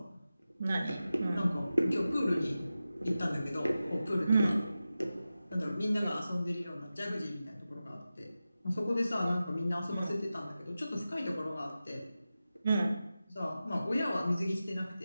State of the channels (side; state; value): both; inverted; correlation -0.94